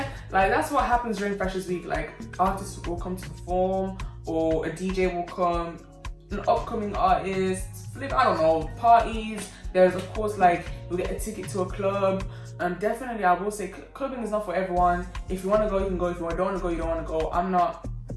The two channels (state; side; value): identical; both; correlation 1.00